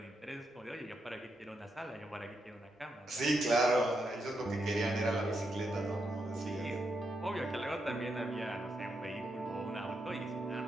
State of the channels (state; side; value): normal; both; correlation 0.82